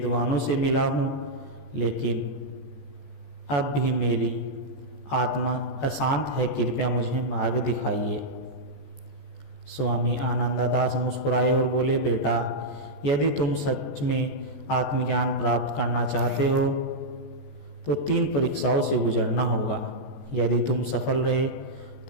से मिला हूँ, लेकिन अब भी मेरी आत्मा अशांत है। कृपया मुझे मार्ग दिखाइए। स्वामी आनंददास मुस्कुराए और बोले, बेटा, यदि तुम सच में आत्मज्ञान प्राप्त करना चाहते हो तो 3 परीक्षाओं से गुजरना होगा। यदि तुम सफल रहे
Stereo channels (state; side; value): late; right; 14 ms